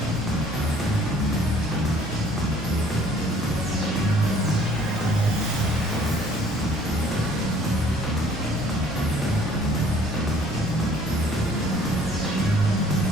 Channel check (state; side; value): normal; both; correlation 0.56